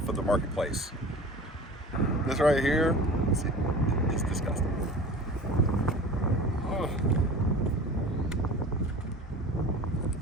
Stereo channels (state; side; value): normal; both; correlation 0.39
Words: of the marketplace. This right here is disgusting. Ugh.